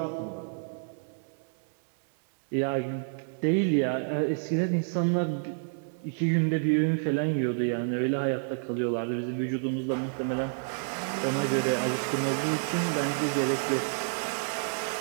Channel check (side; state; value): left; silent; digital silence